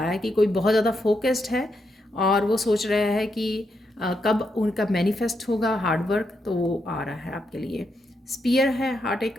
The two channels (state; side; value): normal; both; correlation 0.82